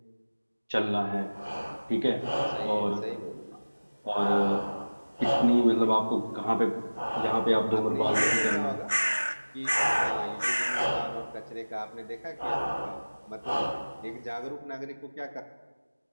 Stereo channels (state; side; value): inverted; both; correlation -1.00